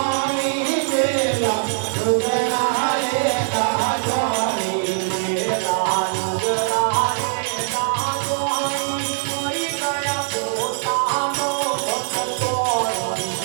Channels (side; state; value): left; silent; digital silence